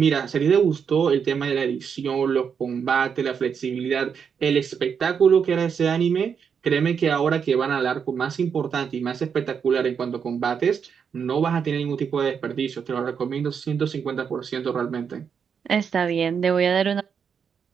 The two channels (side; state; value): left; quieter; 6.9 dB